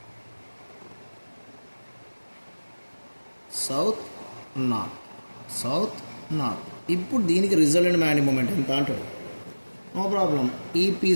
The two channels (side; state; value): both; inverted; correlation -1.00